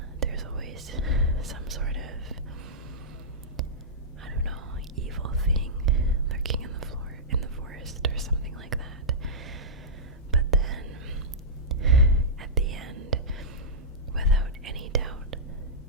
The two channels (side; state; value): both; normal; correlation -0.14